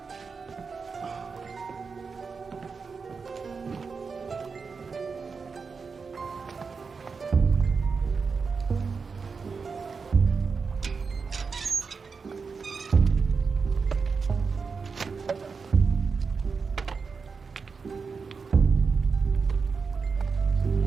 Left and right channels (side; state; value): left; quieter; 5.1 dB